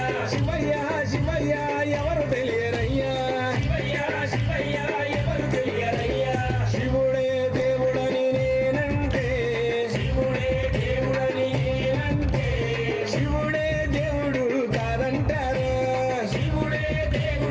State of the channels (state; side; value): identical; both; correlation 1.00